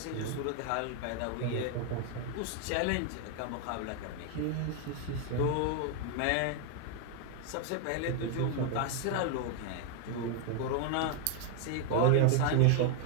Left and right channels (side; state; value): both; different; correlation 0.00